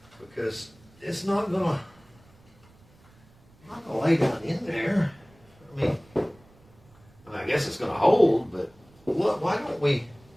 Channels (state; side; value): noise; right; rumble, 28 dB below the sound